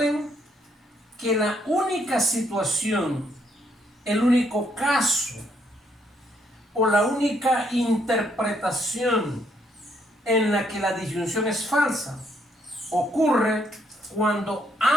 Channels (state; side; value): normal; both; correlation 0.72